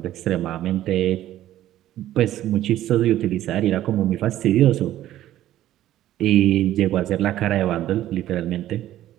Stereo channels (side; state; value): left; quieter; 13.4 dB